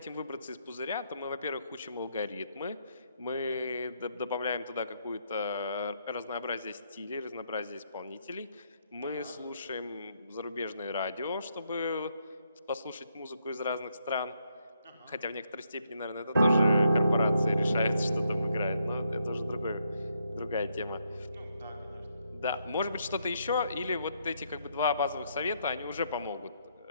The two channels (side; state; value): both; inverted; correlation -0.76